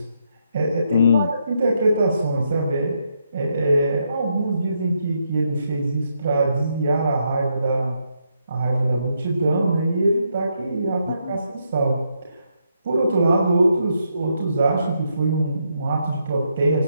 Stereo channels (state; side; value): inverted; both; correlation -0.79